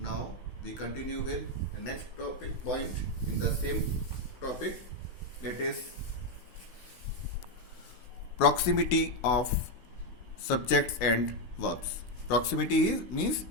we continue with the next topic point in the same topic, that is proximity of subjects and verbs. Proximity means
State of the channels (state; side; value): late; right; 16 ms